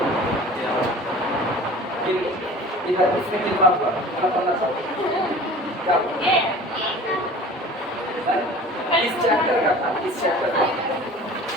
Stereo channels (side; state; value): both; normal; correlation 0.42